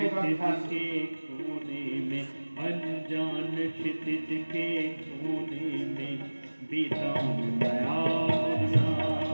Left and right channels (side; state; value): both; inverted; correlation -1.00